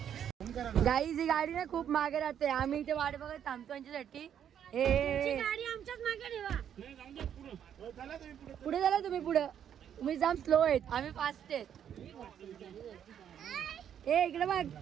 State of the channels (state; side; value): quieter; left; 9.2 dB